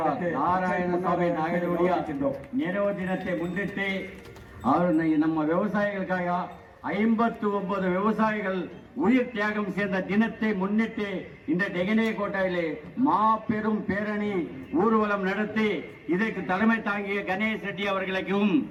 நாராயணசாமி நாயுடைய நினைவு தினத்தை முன்னிட்டு நம்ம விவசாயிகளுக்காக 59 விவசாயிகள் உயிர் தியாகம் செய்த தினத்தை முன்னிட்டு இந்த டெகனே கோட்டையிலே மாபெரும் பேரணி ஊர்வலம் நடத்தி இதற்கு தலைமை தாங்கிய கணேஷ் ரெட்டி அவர்களுக்கும்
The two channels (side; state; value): both; identical; correlation 1.00